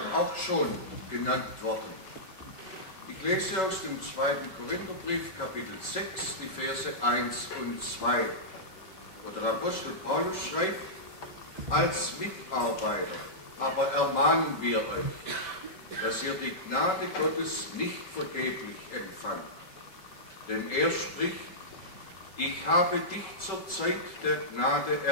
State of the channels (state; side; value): late; right; 5.3 ms